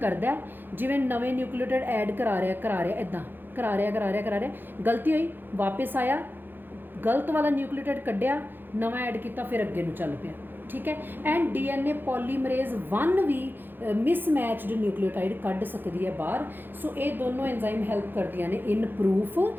ਜਿਵੇਂ ਨਵੇਂ ਨਿਊਕਲੀਓਟਾਈਡ ਐਡ ਕਰਾ ਰਿਹਾ ਇੱਦਾਂ ਕਰਾ ਰਿਹਾ, ਗਲਤੀ ਹੋਈ, ਵਾਪਸ ਆਇਆ, ਗਲਤ ਵਾਲਾ ਨਿਊਕਲੀਓਟਾਈਡ ਕੱਢਿਆ, ਨਵਾਂ ਐਡ ਕੀਤਾ, ਫਿਰ ਅੱਗੇ ਨੂੰ ਚੱਲ ਪਿਆ, ठीक है। एंड DNA पॉलीमरेज 1 भी मिसमैचड न्यूक्लियोटाइड कढ़ सकती है बाहर। सो ये दोनों एंजाइम हैल्प करदियां ने इन प्रूफ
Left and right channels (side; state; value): left; late; 0.096 ms